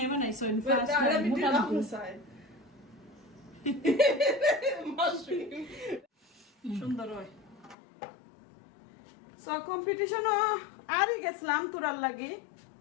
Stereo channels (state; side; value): drops out; right; at 7.8 s